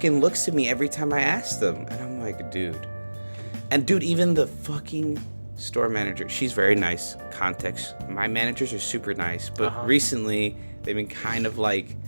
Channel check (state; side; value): inverted; both; correlation -1.00